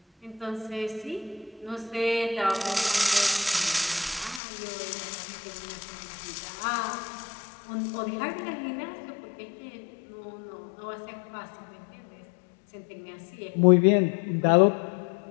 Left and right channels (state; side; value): drops out; right; at 4.4 s